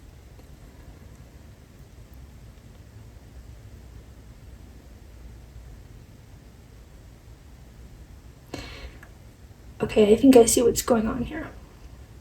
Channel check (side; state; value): both; identical; correlation 1.00